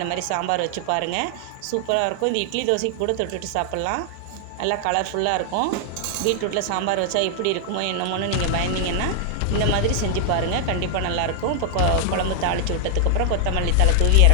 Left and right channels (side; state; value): both; different; correlation 0.00